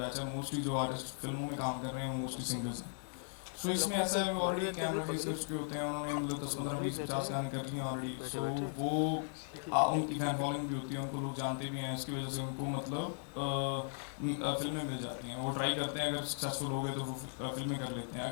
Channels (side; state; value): right; silent; 53 dB below the other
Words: है मोस्टली जो आर्टिस्ट फिल्मों में काम कर रहे हैं मोस्टली सिंगर्स हैं। सो इसमें ऐसा है ऑलरेडी कैमरा फेस कर चुके होते हैं, उन्होंने मतलब 10, 15, 20, 50 गाने कर लिए ऑलरेडी। सो वो उनकी फैन फॉलोइंग भी होती है, उनको लोग जानते भी हैं, इसकी वजह से उनको मतलब फिल्में मिल जाती हैं। वो ट्राई करते हैं, अगर सक्सेसफुल हो गए तो वो फिल्में कर लेते हैं,